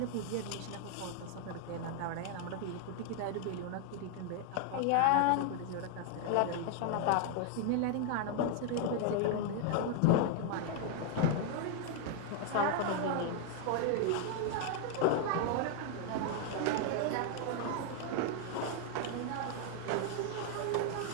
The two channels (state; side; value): different; both; correlation 0.00